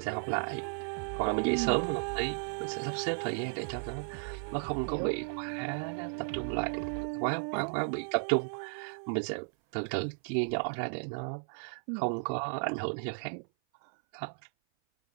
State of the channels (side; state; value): left; silent; 55 dB below the other